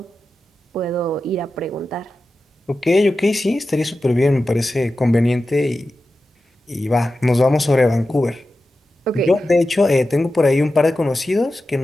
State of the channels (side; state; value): both; normal; correlation 0.93